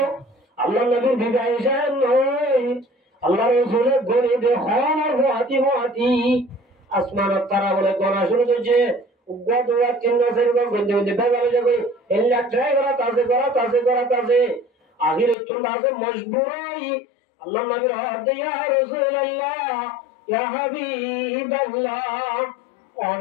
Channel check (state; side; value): drops out; right; at 15.4 s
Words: আল্লাহ নবীর বিবি আয়েশা নয় আল্লাহ রাসূলের গলি দেখান আর হাতি আসমানত তারা বলে গনা শুরু করছে উগ্র দুয়া তিন মাসের পর গন্ধে গন্ধে বেগালে যাবে এল্লা ট্রাই করা তাছে আখিরে চলে আসে মজবুরাই আল্লাহ নবীর হাত ইয়া রাসূলুল্লাহ ইয়া হাবিবাল্লাহ